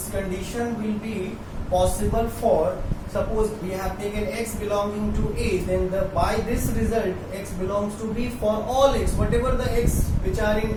condition will be possible for, suppose we have taken X belonging to A, then by this result X belongs to B for all X, whatever the X which are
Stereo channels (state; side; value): identical; both; correlation 1.00